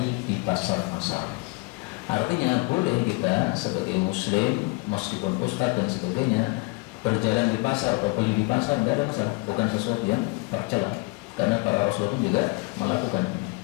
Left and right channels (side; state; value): right; quieter; 27.9 dB